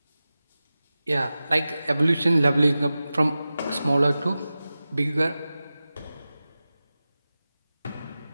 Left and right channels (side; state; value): both; inverted; correlation -0.95